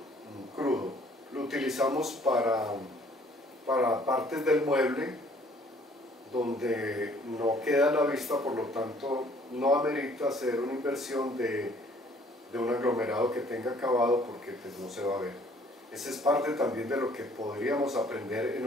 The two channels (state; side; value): normal; both; correlation 0.59